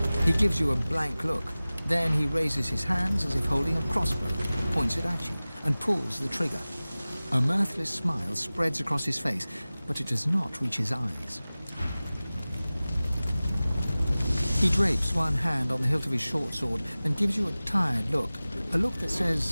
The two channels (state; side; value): inverted; both; correlation -0.98